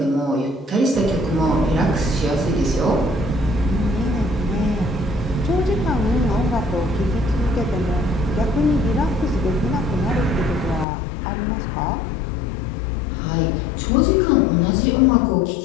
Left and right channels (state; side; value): drops out; right; at 10.9 s